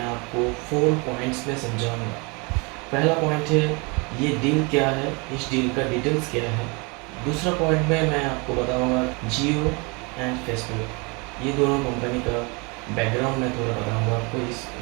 आपको 4 पॉइंट्स में समझाऊँगा। पहला पॉइंट है ये डील क्या है, इस डील का डिटेल्स क्या है। दूसरा पॉइंट में मैं आपको बताऊँगा जियो एंड फेसबुक, ये दोनों कंपनी का बैकग्राउंड मैं थोड़ा बताऊंगा आपको। इस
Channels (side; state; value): left; quieter; 29.6 dB